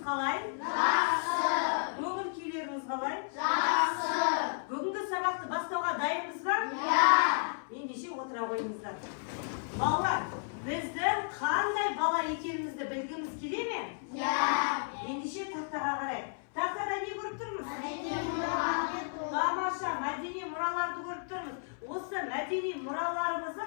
Жақсы. Көңіл күйлеріңіз қалай? Жақсы. Бүгінгі сабақты бастауға дайынбыз ба? Иә. Ендеше отыра қойыңыздар. Балалар, біздің қандай бала екенімізді білгіміз келе ме? Иә. Ендеше тақтаға қарайық. Тақтада не көріп тұрмыз? Мәдени мұраларды. Тамаша, мәдени мұраларды көріп тұрмыз. Осы мәдени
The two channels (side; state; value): right; silent; 56 dB below the other